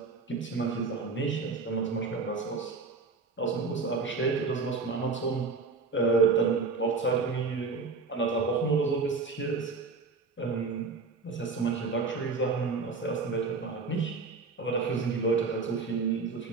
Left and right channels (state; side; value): quieter; left; 4.3 dB